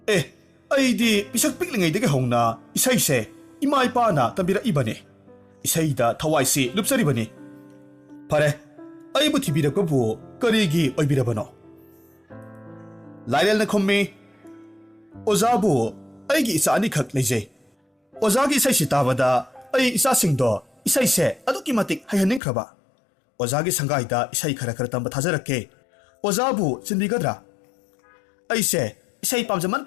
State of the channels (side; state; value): right; drops out; at 22.4 s